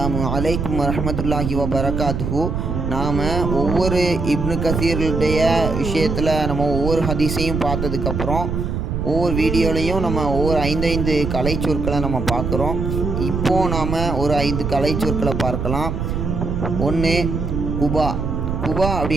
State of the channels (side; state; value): right; noise; rumble, 2 dB below the sound